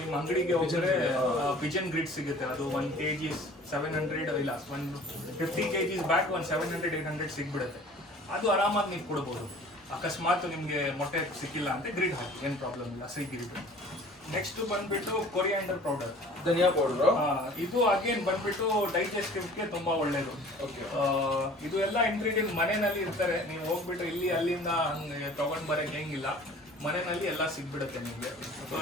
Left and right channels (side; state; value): both; normal; correlation 0.47